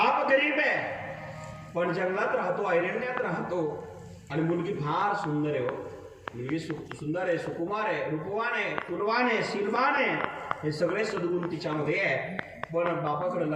गरीब आहे, पण जंगलात राहतो, अरण्यात राहतो, आणि मुलगी फार सुंदर आहे. मुलगी सुंदर आहे, सुकुमार आहे, रूपवान आहे, तुलवान आहे, शीलवान आहे, हे सगळे सद्गुण तिच्यामध्ये आहे. पण बापाकडे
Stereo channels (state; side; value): identical; both; correlation 1.00